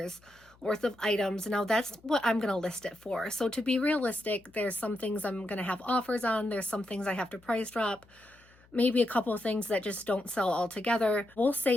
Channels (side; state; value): left; noise; hum, 29 dB below the sound